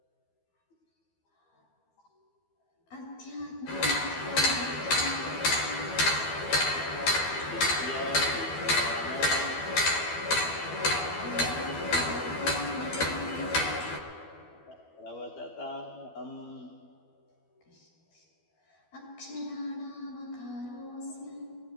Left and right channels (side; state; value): right; late; 12 ms